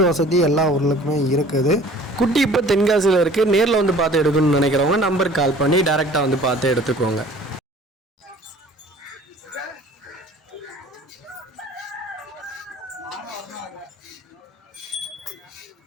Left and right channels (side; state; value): both; normal; correlation 0.49